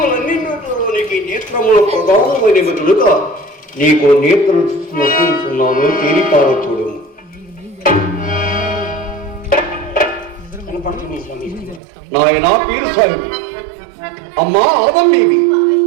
నేత్రములు ప్రధానమైనవి కనుక నీకు నేత్రం నొప్పిస్తున్నాను, తేలిపార చూడము. నాయన పీరస్వామి, అమ్మా ఆదమ్మేవి,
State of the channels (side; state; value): left; drops out; at 11.8 s